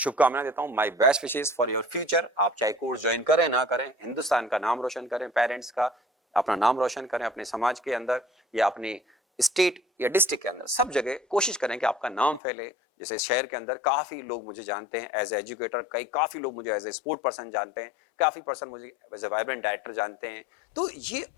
देता हूं, my best wishes for your future. आप चाहे कोर्स ज्वाइन करें ना करें, हिंदुस्तान का नाम रोशन करें, पेरेंट्स का अपना नाम रोशन करें, अपने समाज के अंदर या अपने स्टेट या डिस्ट्रिक्ट के अंदर, सब जगह कोशिश करें कि आपका नाम फैले। जैसे शहर के अंदर काफी लोग मुझे जानते हैं एज एजुकेटर, काफी लोग मुझे एज ए स्पोर्ट पर्सन जानते हैं, काफी पर्सन मुझे एज ए वाइब्रेंट डायरेक्टर जानते हैं। तो ये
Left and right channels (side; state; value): right; drops out; at 12.4 s